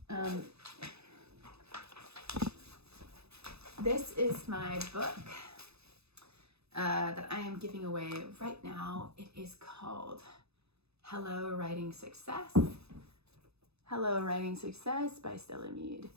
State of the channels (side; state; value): left; late; 0.79 ms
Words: This is my book that I am giving away right now. It is called Hello Writing Success. Hello Writing Success by Stella Mead.